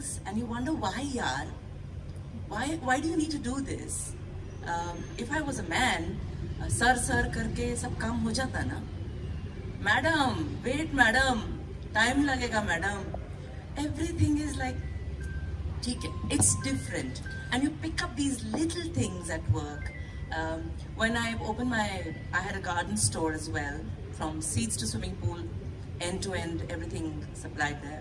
and you wonder, why yaar? Why do you need to do this? If I was a man, sir karke sab kaam ho jata na. Madam, wait madam, time lagega madam. Everything is like, it's different. And you pick up these little things at work. When I opened I had a garden store as well, from seeds to swimming pool, end to end, everything supplied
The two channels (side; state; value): both; identical; correlation 1.00